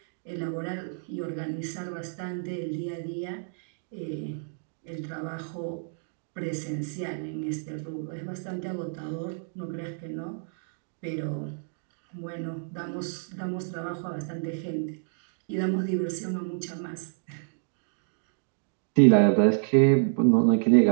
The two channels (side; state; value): left; silent; digital silence